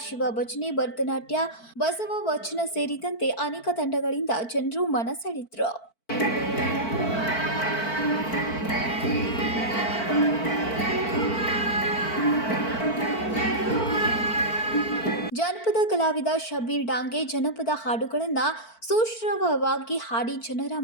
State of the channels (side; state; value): right; late; 4.5 ms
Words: ಶಿವ ಭಜನೆ, ಭರತನಾಟ್ಯ, ಬಸವ ವಚನ ಸೇರಿದಂತೆ ಅನೇಕ ತಂಡಗಳಿಂದ ಜನರು ಮನ ಸೆಳೆದರು. ಜನಪದ ಕಲಾವಿದ ಶಬೀರ್ ಡಾಂಗೆ ಜನಪದ ಹಾಡುಗಳನ್ನು ಸುಶ್ರಾವ್ಯವಾಗಿ ಹಾಡಿ ಜನರ